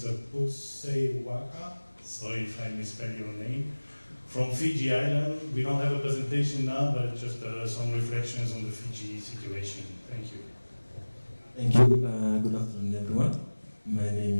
N.Boseiwaqa, sorry if I misspell your name, from Fiji Island. We don't have a presentation now, but just some reflections on the Fiji situation. Thank you. Thank you. Good afternoon, everyone. My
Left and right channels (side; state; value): both; inverted; correlation -1.00